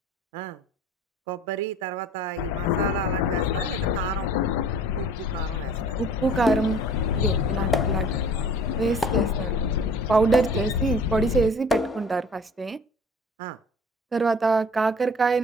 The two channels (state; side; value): normal; both; correlation 0.48